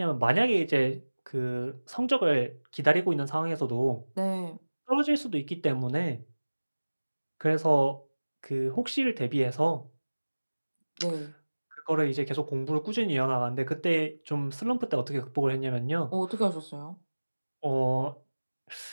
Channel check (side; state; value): both; inverted; correlation -1.00